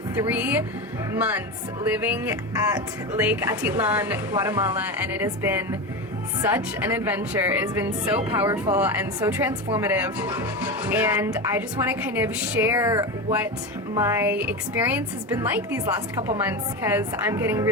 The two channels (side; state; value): both; normal; correlation 0.20